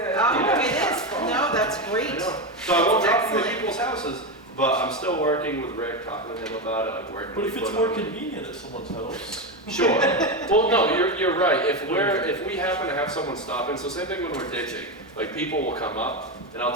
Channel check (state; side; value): normal; both; correlation 0.14